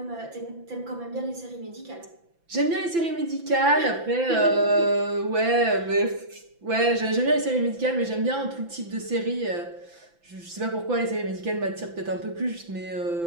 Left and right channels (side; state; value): left; late; 5.9 ms